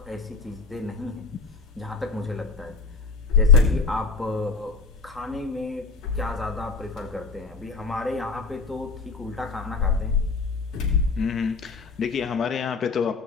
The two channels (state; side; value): quieter; right; 4.4 dB